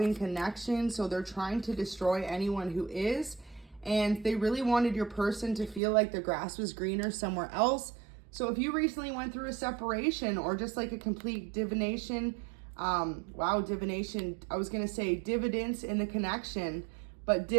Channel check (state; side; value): drops out; left; at 5.8 s